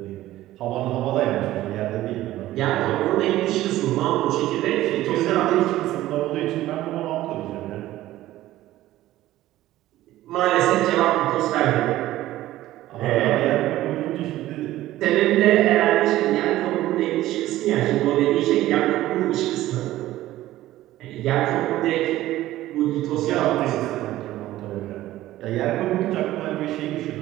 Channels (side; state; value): left; quieter; 15.2 dB